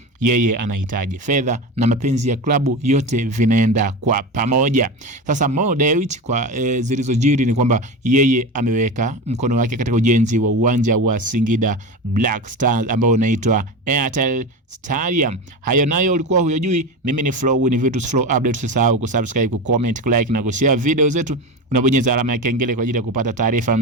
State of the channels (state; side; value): normal; both; correlation 0.23